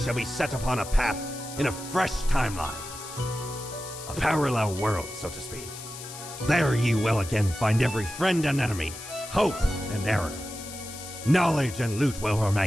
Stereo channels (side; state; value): left; noise; hiss, 12 dB below the sound